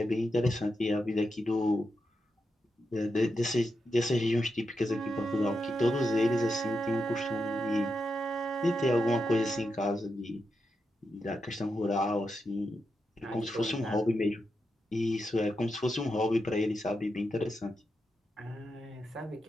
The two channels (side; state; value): both; normal; correlation 0.86